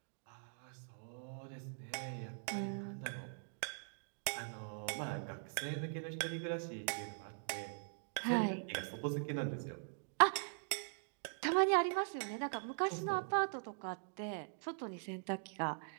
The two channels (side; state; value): left; silent; digital silence